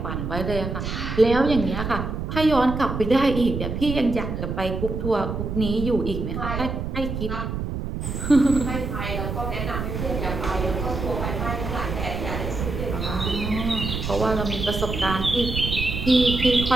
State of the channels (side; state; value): right; noise; rumble, 4 dB below the sound